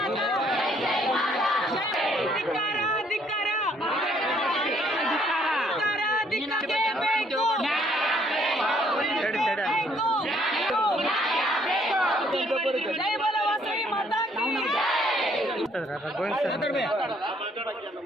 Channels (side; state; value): both; normal; correlation 0.65